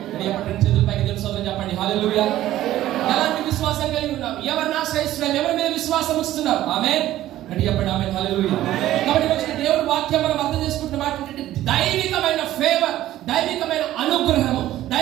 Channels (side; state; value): left; quieter; 14.0 dB